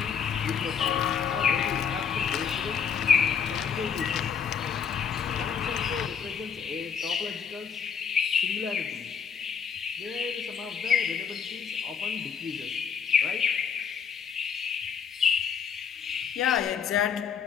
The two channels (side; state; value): right; quieter; 6.9 dB